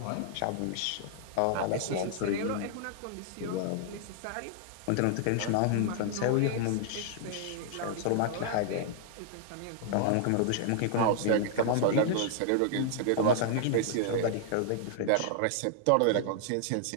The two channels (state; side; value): different; both; correlation -0.01